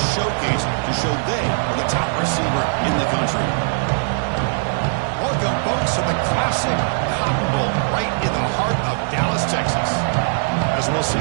showcase to show they are the top receiver in the country. Welcome, folks, to the classic Cotton Bowl right in the heart of Dallas, Texas. As we'll see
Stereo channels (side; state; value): left; silent; 66 dB below the other